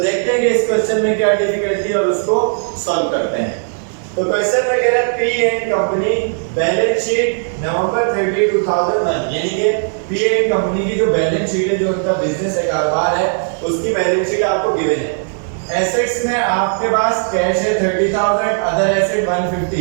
देखते हैं कि इस क्वेश्चन में क्या डिफिकल्टी और उसको सॉल्व करते हैं। तो क्वेश्चन में कह रहा है P and company balance sheet November 30 2001, यानी कि पी एंड कंपनी की जो बैलेंस शीट है, जो उनका बिजनेस है, कारोबार है, उसकी बैलेंस शीट आपको गिवन है। एसेट्स में आपके पास कैश है 30,000, अदर एसेट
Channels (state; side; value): silent; left; 57 dB below the other